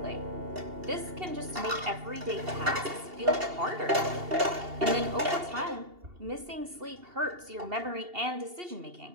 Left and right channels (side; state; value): left; late; 2.8 ms